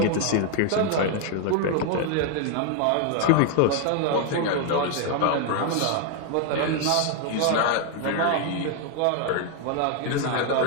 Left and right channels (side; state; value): both; different; correlation 0.01